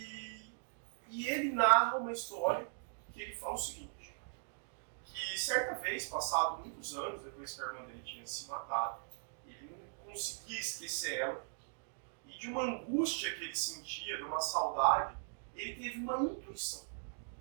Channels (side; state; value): left; silent; digital silence